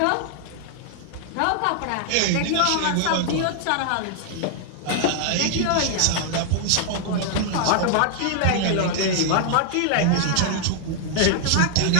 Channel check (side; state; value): both; different; correlation 0.00